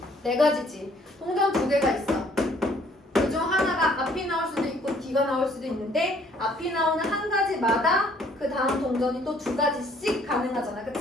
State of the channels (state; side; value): normal; both; correlation 0.61